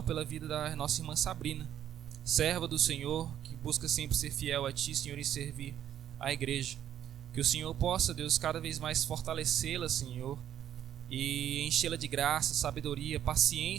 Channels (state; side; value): quieter; left; 10.6 dB